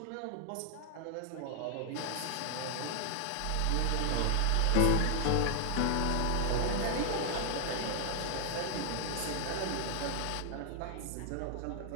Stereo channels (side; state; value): both; different; correlation 0.00